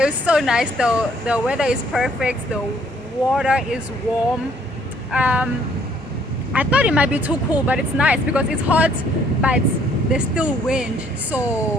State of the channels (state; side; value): normal; both; correlation 0.63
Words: it's so nice though. The weather is perfect. The water is warm. I thought it might be too cool, but it's nice because it's hot, but there's still wind.